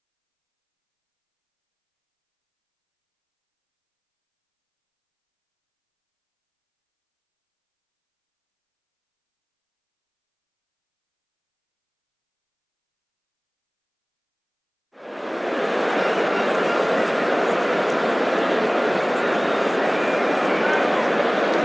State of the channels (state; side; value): identical; both; correlation 1.00